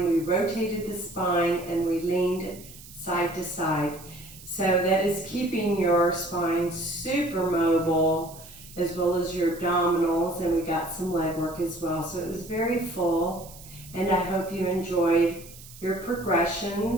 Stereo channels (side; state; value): right; noise; hiss, 18 dB below the sound